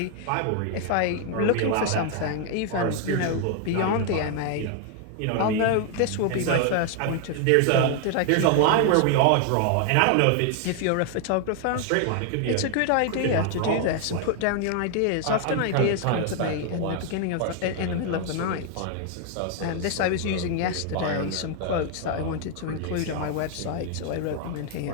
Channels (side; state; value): both; different; correlation 0.00